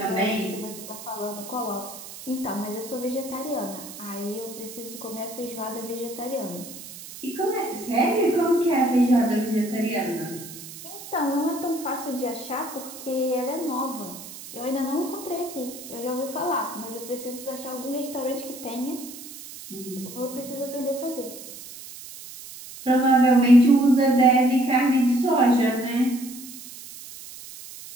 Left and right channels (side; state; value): right; noise; hiss, 14 dB below the sound